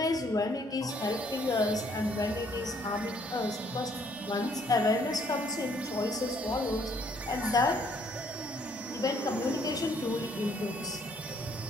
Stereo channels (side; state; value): both; normal; correlation 0.65